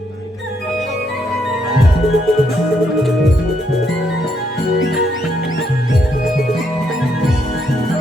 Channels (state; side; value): normal; both; correlation 0.75